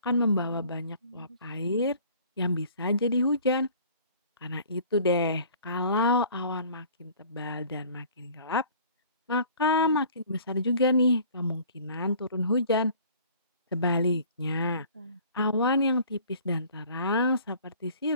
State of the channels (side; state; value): both; inverted; correlation -0.50